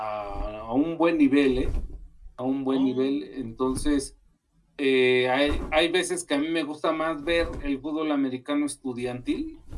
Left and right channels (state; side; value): identical; both; correlation 1.00